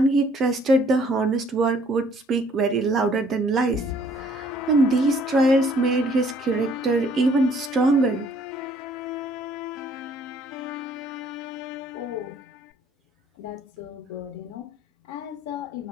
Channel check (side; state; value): both; normal; correlation 0.61